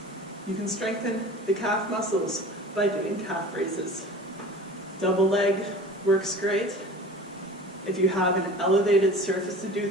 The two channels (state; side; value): normal; both; correlation 0.40